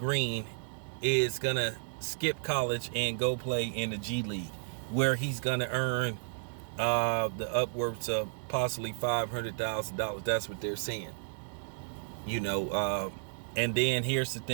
is going to skip college and go play in the G League, where he's going to earn the upwards of possibly $500,000. That's what they're saying. And then here's the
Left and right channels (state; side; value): silent; left; digital silence